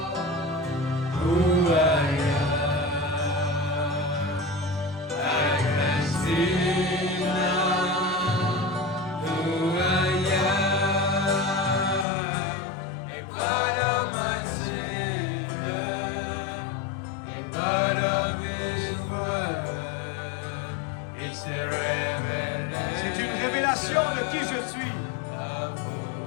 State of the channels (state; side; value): drops out; right; at 12.1 s